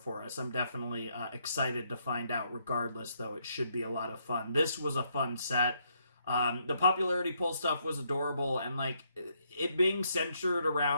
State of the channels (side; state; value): both; inverted; correlation -0.74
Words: us. I'm definitely excited to find out. Regardless, though, it should be a lot of fun. This was a fun set. The popularity poll stuff was adorable, and like it being centered